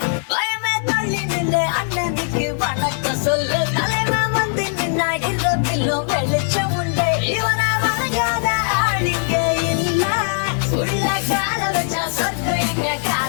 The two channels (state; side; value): silent; right; 66 dB below the other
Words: பயமே தள்ளி நின்று அண்ணனுக்கு வணக்கம் சொல்லு தலைவன் வந்து நின்னா இரவிலும் வெளிச்சம் உண்டு இவனை வணங்காத ஆளுங்க இல்ல உள்ள கால வச்சா சொர்க்கம் எங்க